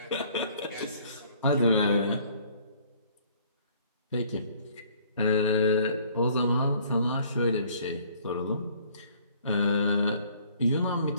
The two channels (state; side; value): inverted; both; correlation -0.57